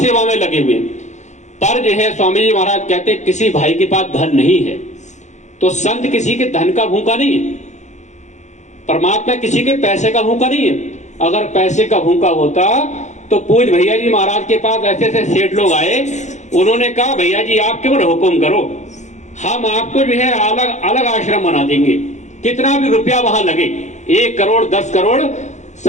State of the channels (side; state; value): right; late; 0.34 ms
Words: में लगे हुए। पर जो है स्वामी जी महाराज कहते हैं किसी भाई के पास धन नहीं है तो संत किसी के धन का भूखा नहीं है, परमात्मा किसी के पैसे का भूखा नहीं है। अगर पैसे का भूखा होता तो पूज भैया जी महाराज के पास ऐसे ऐसे सेठ लोग आए, उन्होंने कहा भैया जी आप केवल हुक्म करो, हम आपको जो है अलग अलग आश्रम बना देंगे, कितना भी रुपया वहां लगे, 1 करोड़ 10 करोड़